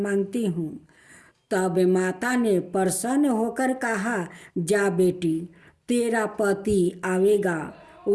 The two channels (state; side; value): identical; both; correlation 1.00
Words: हूँ। तब माता ने प्रसन्न होकर कहा, जा बेटी, तेरा पति आवेगा।